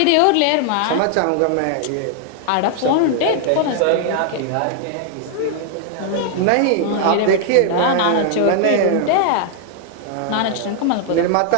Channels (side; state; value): both; different; correlation 0.00